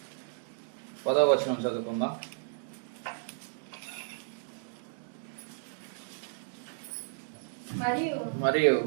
10వ వచనం చదువుకుందాం. మరియు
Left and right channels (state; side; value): silent; left; digital silence